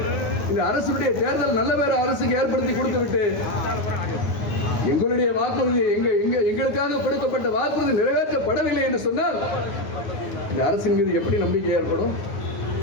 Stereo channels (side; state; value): right; late; 9.7 ms